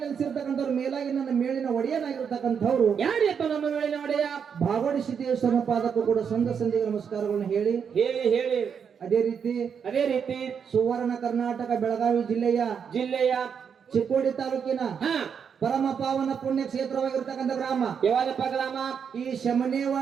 ನೆಲೆಸಿರ್ತಕ್ಕಂಥವ್ರು ಮೇಲಾಗಿ ನನ್ನ ಮೇಲಿನ ಒಡೆಯನಾಗಿರ್ತಕ್ಕಂಥವ್ರು ಯಾರಿಯಪ್ಪ ನಮ್ಮ ಮೇಲಿನ ಒಡೆಯ? ಭಾಗವಡಿ ಸಿದ್ದೇಶ್ವರನ ಪಾದಕ್ಕೂ ಕೂಡ ಸಂಧಿಗೆ ನಮಸ್ಕಾರಗಳನ್ನು ಹೇಳಿ ಅದೇ ರೀತಿ ಸುವರ್ಣ ಕರ್ನಾಟಕ ಬೆಳಗಾವಿ ಜಿಲ್ಲೆಯ ಚಿಕ್ಕೋಡಿ ತಾಲೂಕಿನ ಪರಮ ಪಾವನ ಪುಣ್ಯ ಕ್ಷೇತ್ರವಾಗಿರ್ತಕ್ಕಂಥ ಗ್ರಾಮ ಯಾವ್ದಪ್ಪ ಗ್ರಾಮ? ಈ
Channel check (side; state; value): left; quieter; 7.0 dB